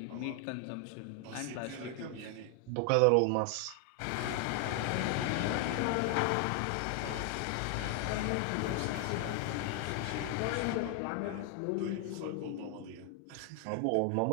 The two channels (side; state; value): both; different; correlation 0.00